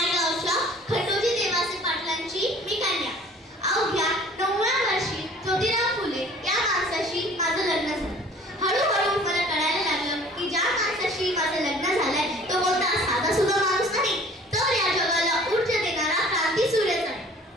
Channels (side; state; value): both; normal; correlation 0.50